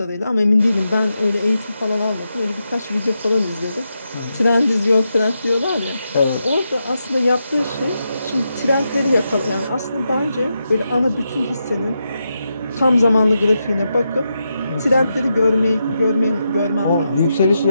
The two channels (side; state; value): both; inverted; correlation -0.86